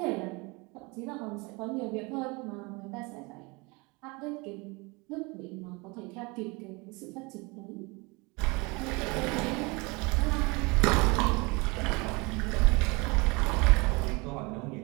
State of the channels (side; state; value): left; quieter; 27.0 dB